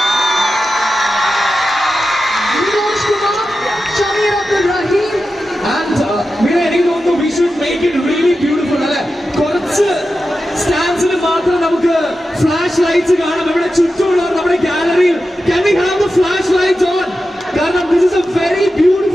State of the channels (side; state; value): both; normal; correlation 0.91